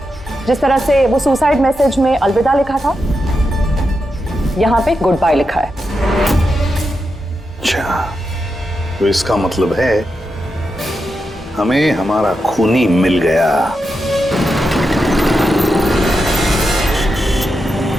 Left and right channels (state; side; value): normal; both; correlation 0.87